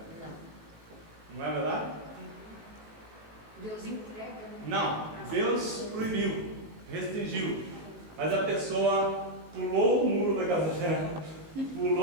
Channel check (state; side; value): late; left; 18 ms